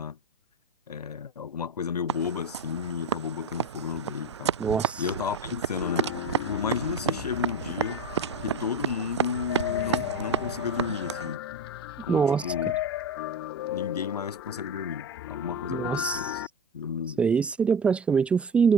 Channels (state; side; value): normal; both; correlation 0.21